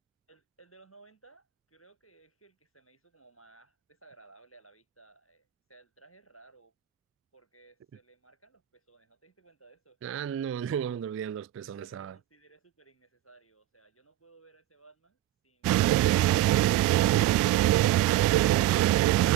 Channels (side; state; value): left; quieter; 14.1 dB